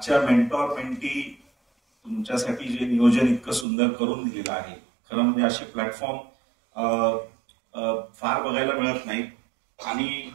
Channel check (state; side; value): drops out; left; at 3.7 s